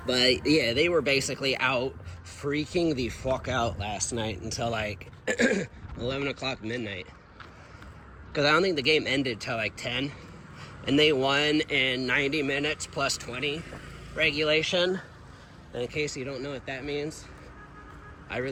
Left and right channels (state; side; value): identical; both; correlation 1.00